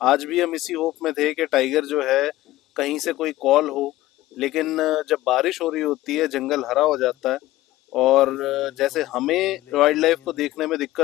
भी हम इसी होप में थे कि टाइगर जो है कहीं से कोई कॉल हो, लेकिन जब बारिश हो रही होती है जंगल हरा हो जाता है, और जैसे हमें वाइल्ड लाइफ को देखने में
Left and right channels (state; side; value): quieter; right; 16.5 dB